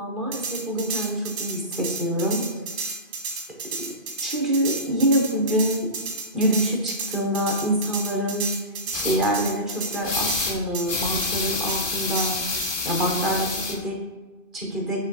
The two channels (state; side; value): late; left; 2.5 ms